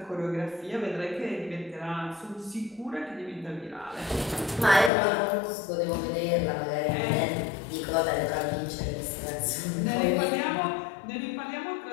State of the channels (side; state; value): right; drops out; at 4.9 s